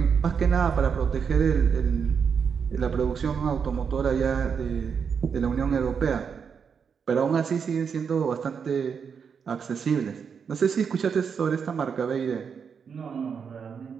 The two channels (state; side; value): quieter; left; 6.5 dB